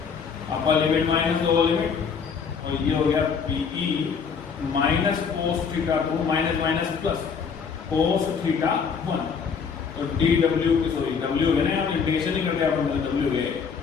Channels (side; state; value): right; quieter; 6.1 dB